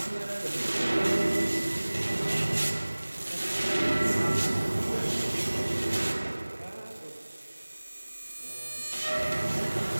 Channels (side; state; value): both; inverted; correlation -1.00